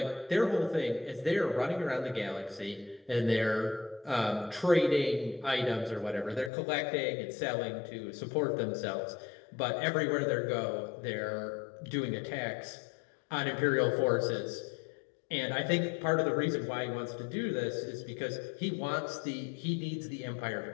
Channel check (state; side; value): drops out; right; at 6.5 s